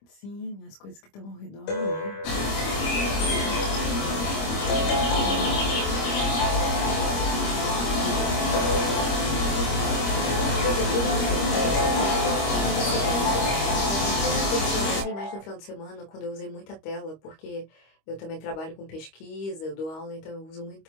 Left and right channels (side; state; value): right; late; 25 ms